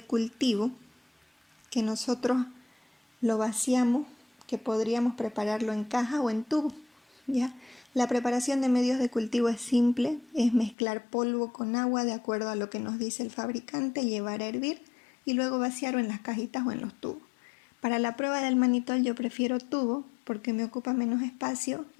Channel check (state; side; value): drops out; right; at 10.8 s